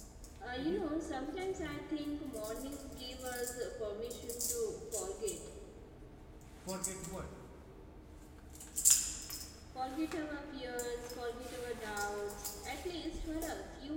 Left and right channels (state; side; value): identical; both; correlation 1.00